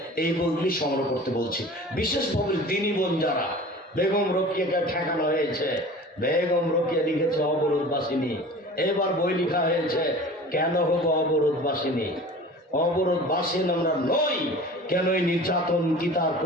এই বইগুলি সংগ্রহ করতে বলছি। বিশেষভাবে দিনী বোন যারা, বেগম রোকেয়াকে ঠেকানো হয়েছে, বেগম রোকেয়া লিখেছে অবরোধবাসিনী। এবার বই লেখা হয়েছে কেন হবো অবরোধবাসিনী। অবরোধবাসীন আমরা নই, কেন এই নির্যাতন কি তার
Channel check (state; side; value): normal; both; correlation 0.40